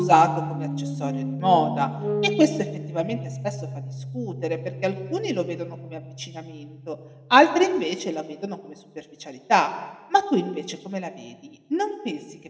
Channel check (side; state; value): both; identical; correlation 1.00